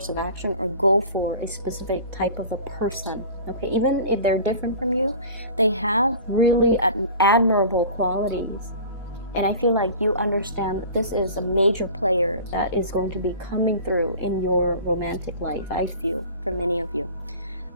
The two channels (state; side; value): inverted; both; correlation -0.40